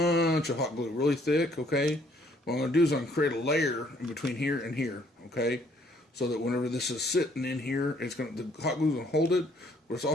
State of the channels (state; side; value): normal; both; correlation 0.64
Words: of hot glue, really thick, okay? What I'm going to do is I'm going to create a layer in between here and here, okay? So that whenever this is sitting in here, the hot glue is going to hold it, but it's